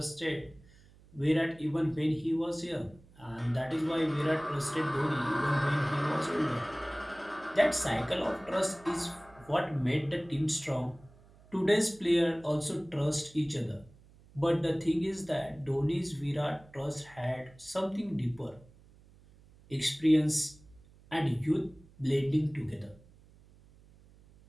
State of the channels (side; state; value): right; noise; hum, 25 dB below the sound